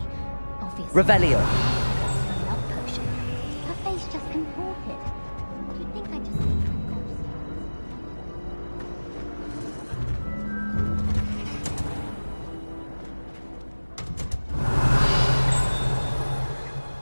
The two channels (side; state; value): both; inverted; correlation -1.00